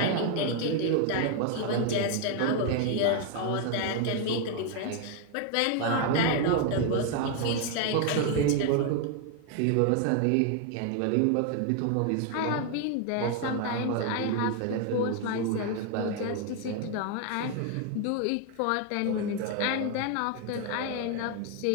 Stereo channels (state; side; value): different; both; correlation 0.01